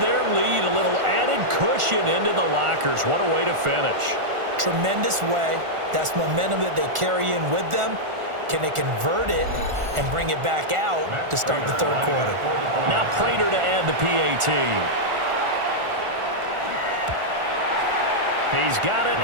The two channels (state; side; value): late; left; 1.4 ms